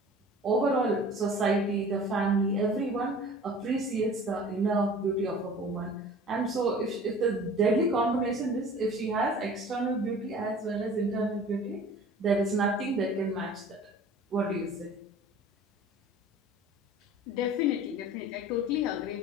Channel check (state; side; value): normal; both; correlation 0.44